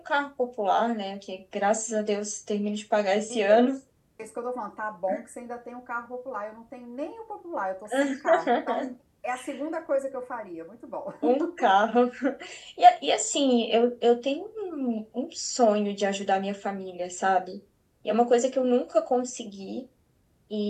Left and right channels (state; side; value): identical; both; correlation 1.00